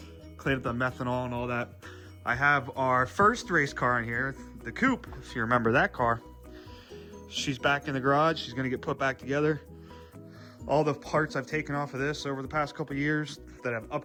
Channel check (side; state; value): both; identical; correlation 1.00